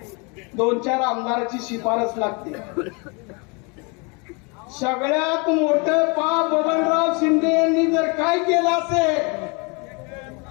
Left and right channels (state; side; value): quieter; right; 31.5 dB